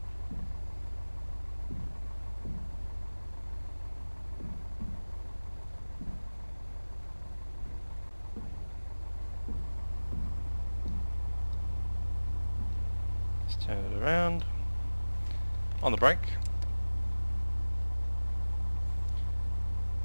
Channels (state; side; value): inverted; both; correlation -1.00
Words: Turn it around on the brake,